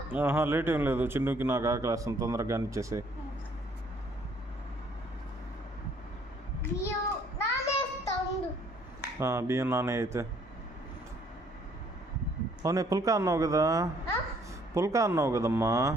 లేట్ ఏం లేదు, చిన్నుకి నాకు ఆకలి వేస్తుంది, తొందరగా ఇచ్చేసి. బియ్యం నానే అయితే. అవునే పుల్కా అన్నావు కదా, పుల్కా అన్నావు కదమ్మా,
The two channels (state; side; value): normal; both; correlation 0.63